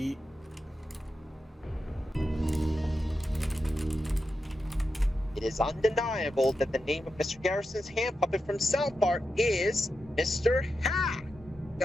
It is undeniable that the name of Mr. Garrison's hand puppet from South Park is Mr. Hat.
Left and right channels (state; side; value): normal; both; correlation 0.88